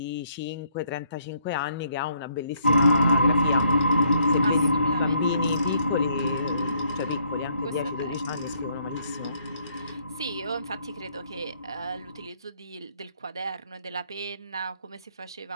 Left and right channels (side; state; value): both; inverted; correlation -0.69